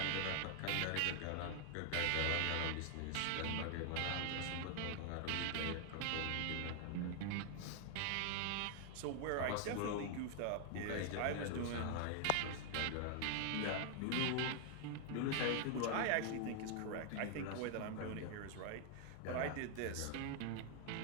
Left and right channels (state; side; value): different; both; correlation 0.00